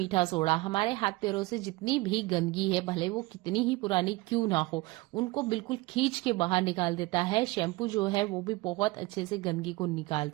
सोडा हमारे हाथ पैरों से जितनी भी गंदगी है, भले वो कितनी ही पुरानी क्यों ना हो, उनको बिल्कुल खींच के बाहर निकाल देता है। शैम्पू जो है वो भी बहुत अच्छे से गंदगी को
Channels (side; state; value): left; quieter; 21.9 dB